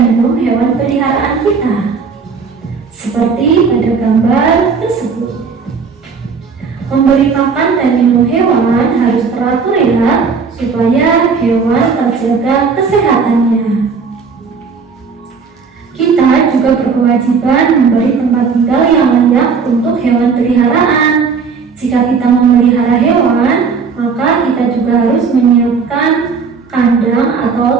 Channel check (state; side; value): quieter; left; 5.4 dB